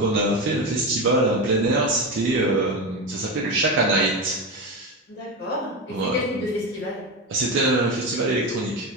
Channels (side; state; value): both; normal; correlation 0.18